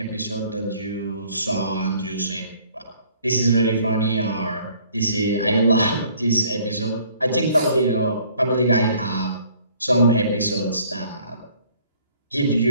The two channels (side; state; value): both; inverted; correlation -0.58